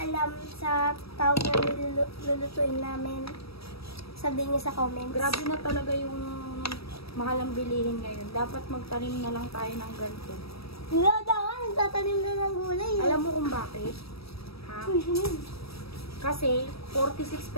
alam sa tawag na lulutuin namin, sabihin nyo sa comments. Grabe na talaga yung mahal ang bilihin ngayon. Dapat magtanim na lang tayo ng ganito. Wala daw, nagtatanim na ng gulay. Alam mo kung bakit? Ha? Kasi 46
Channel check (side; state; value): right; late; 0.77 ms